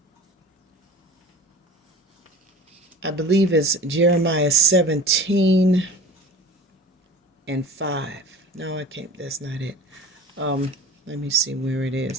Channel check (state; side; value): normal; both; correlation 0.39